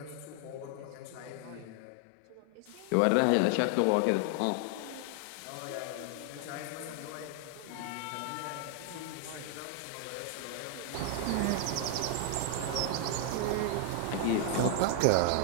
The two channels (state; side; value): different; both; correlation 0.00